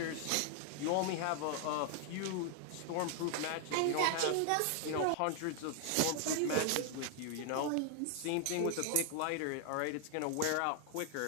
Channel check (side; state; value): both; different; correlation 0.00